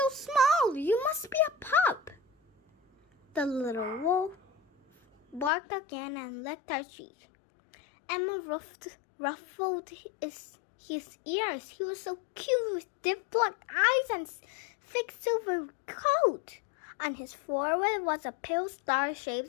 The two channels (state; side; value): drops out; right; at 5.5 s